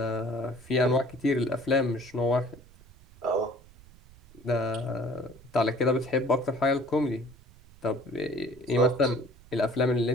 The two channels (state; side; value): noise; right; rumble, 24 dB below the sound